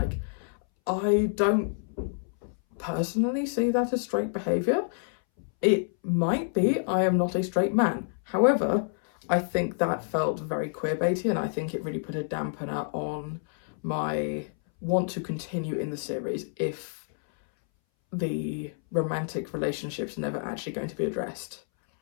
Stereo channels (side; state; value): right; silent; 59 dB below the other